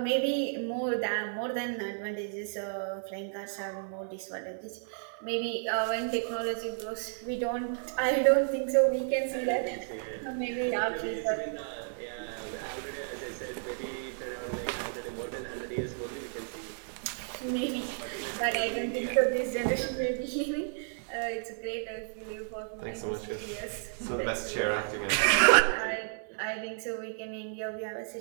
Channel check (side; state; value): left; silent; digital silence